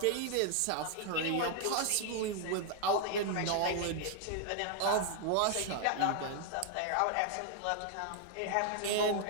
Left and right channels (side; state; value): both; different; correlation 0.00